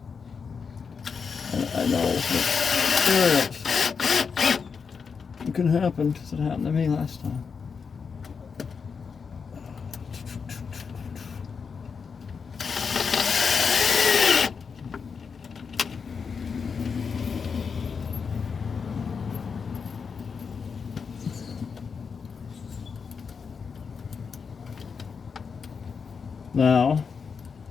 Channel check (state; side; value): quieter; right; 5.8 dB